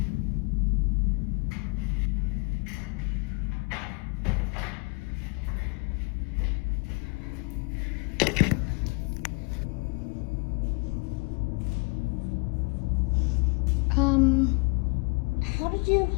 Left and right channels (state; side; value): quieter; right; 30.5 dB